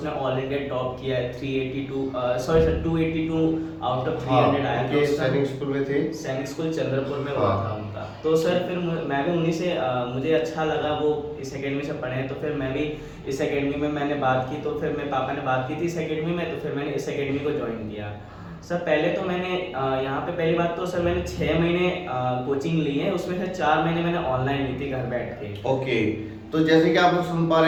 ऑल इंडिया टॉप किया है। 282 आउट ऑफ 300 आया था। सैनिक स्कूल में थे, सैनिक स्कूल चंद्रपुर में हुआ था उनका। तो सर फिर मैं भी उन्हीं से मुझे अच्छा लगा वो इस एकेडमी से पढ़े, तो फिर मैं भी इस एकेडमी में मैंने बात की। तो फिर मेरे पापा ने बात की थी इस एकेडमी में, तो फिर मैंने इस एकेडमी को ज्वाइन किया। सर पहले तो मैंने यहाँ पे पहली बात तो सर मैंने 6 महीने कोचिंग ली है, उसमें से 4 महीने मैंने ऑनलाइन ली थी घर बैठ के। ओके, तो जैसे कि आप लोग सुन पा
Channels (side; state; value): both; identical; correlation 1.00